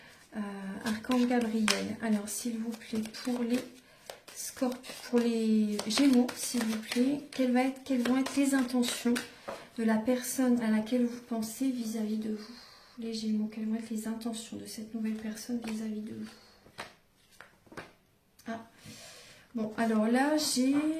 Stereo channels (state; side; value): identical; both; correlation 1.00